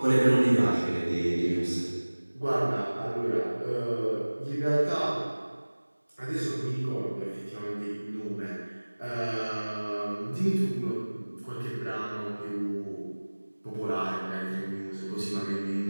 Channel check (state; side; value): inverted; both; correlation -1.00